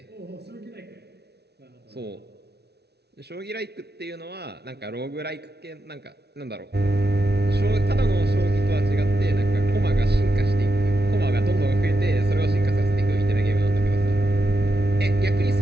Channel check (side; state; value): left; late; 0.48 ms